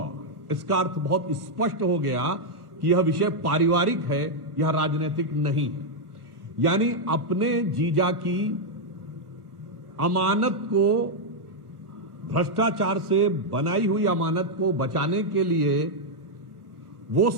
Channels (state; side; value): late; left; 1.3 ms